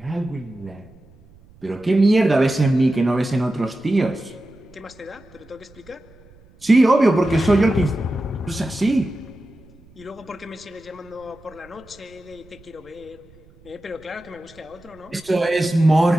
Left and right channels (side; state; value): right; noise; rumble, 26 dB below the sound